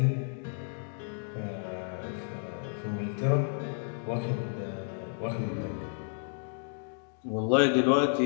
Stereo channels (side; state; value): right; silent; digital silence